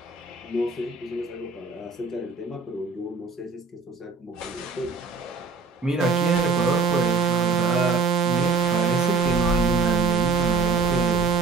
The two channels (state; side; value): quieter; left; 4.4 dB